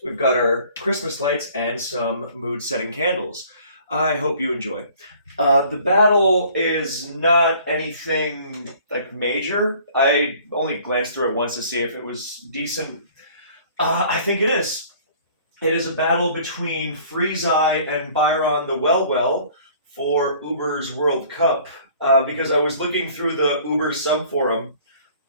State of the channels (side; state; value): both; inverted; correlation -0.53